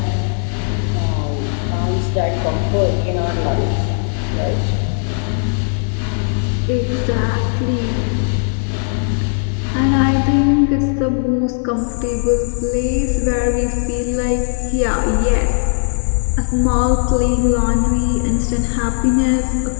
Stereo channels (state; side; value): silent; right; digital silence